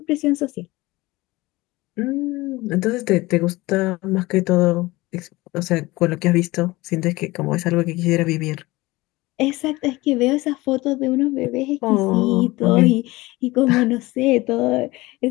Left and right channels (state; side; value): quieter; right; 20.5 dB